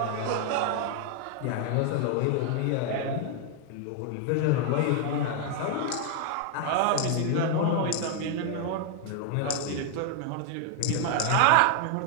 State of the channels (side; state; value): both; different; correlation 0.00